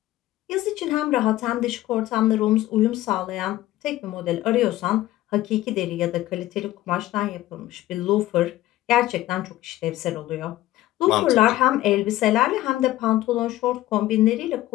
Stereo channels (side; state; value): right; quieter; 15.6 dB